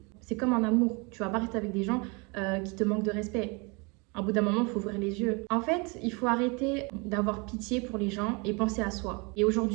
C'est comme en amour, tu vas pas rester avec des gens qui te manquent de respect. À bout d'un moment, il faut ouvrir les yeux. En fait, il faut arrêter d'avoir pitié pour les gens et penser à soi. Et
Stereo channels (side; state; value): left; quieter; 29.9 dB